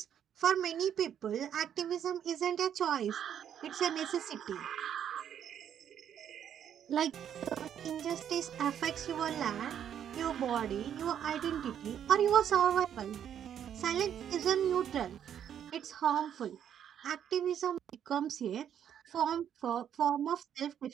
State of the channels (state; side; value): quieter; left; 9.3 dB